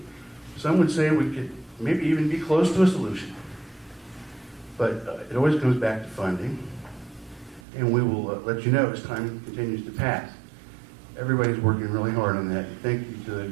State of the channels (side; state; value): left; drops out; at 7.6 s